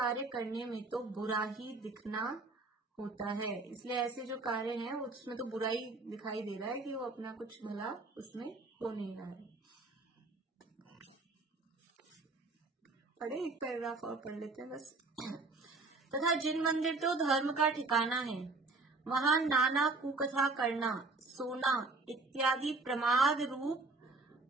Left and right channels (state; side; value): quieter; left; 3.6 dB